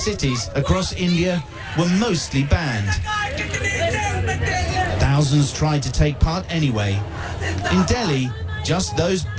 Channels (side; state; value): both; identical; correlation 1.00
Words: across India were mostly banned. Thousands tried to take part anyway. In Delhi, just those